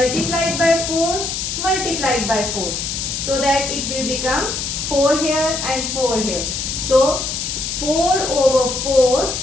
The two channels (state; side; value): noise; left; hiss, 3 dB below the sound